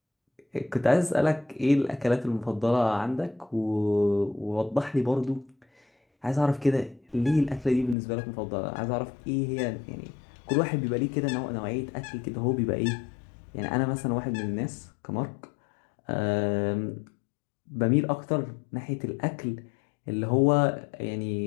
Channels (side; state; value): right; drops out; at 8.0 s